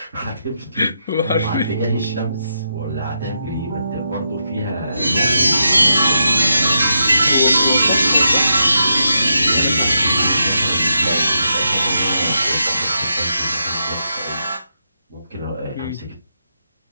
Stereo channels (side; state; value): both; inverted; correlation -0.83